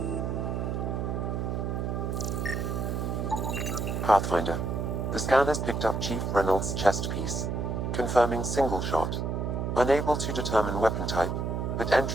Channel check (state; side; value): noise; right; hum, 1 dB below the sound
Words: Pathfinder. The scan has picked up Chief Reynolds' chest piece, confirming single shot. Unable to determine weapon type, but